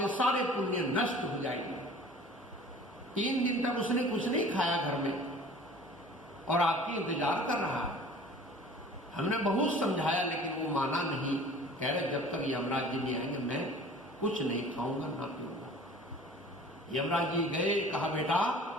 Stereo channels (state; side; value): normal; both; correlation 0.46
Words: सारे पुण्य नष्ट हो जाएंगे। 3 दिन तक उसने कुछ नहीं खाया घर में और आपकी इंतजार कर रहा है। हमने बहुत समझाया लेकिन वो माना नहीं। कह रहे जब तक यमराज जी नहीं आएंगे मैं कुछ नहीं खाऊंगा ना पीऊंगा। यमराज जी गए, कहा बेटा